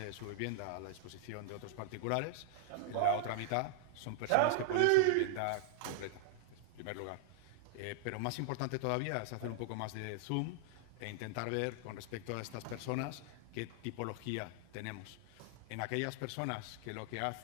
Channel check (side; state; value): both; different; correlation 0.00